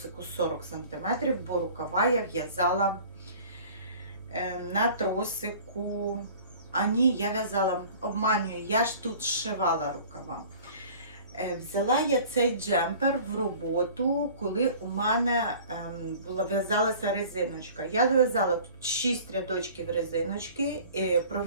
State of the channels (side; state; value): both; inverted; correlation -0.46